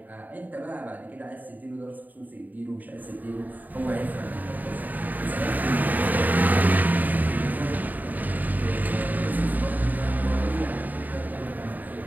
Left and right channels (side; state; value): left; late; 0.084 ms